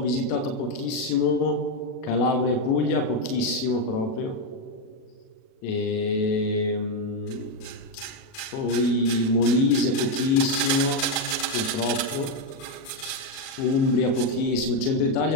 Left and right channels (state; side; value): late; right; 37 ms